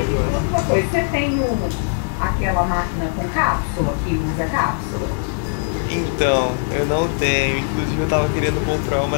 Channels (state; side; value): silent; right; digital silence